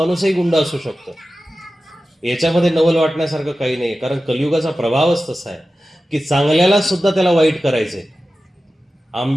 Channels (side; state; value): both; normal; correlation 0.94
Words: गुंड असू शकतो, याच्यामध्ये नवल वाटण्यासारखं काही नाही. कारण कलियुगाचा प्रभावच तसा आहे की चांगल्याला सुद्धा त्याला वाईट करायचंय.